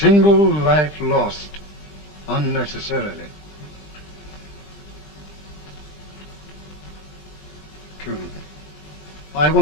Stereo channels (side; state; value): right; late; 20 ms